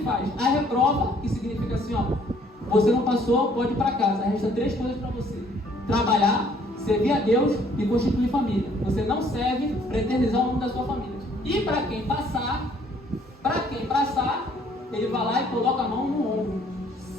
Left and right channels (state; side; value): normal; both; correlation 0.61